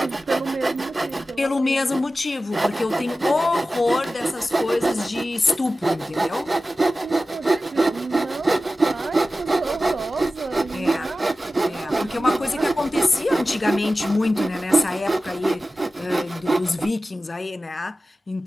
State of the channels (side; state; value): both; normal; correlation 0.95